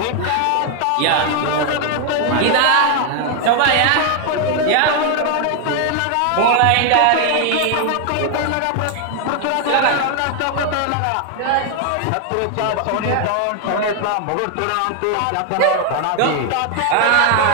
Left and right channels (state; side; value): different; both; correlation 0.00